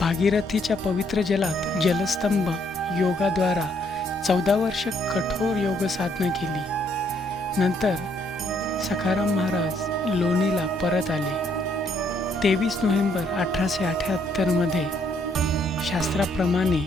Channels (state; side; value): normal; both; correlation 0.69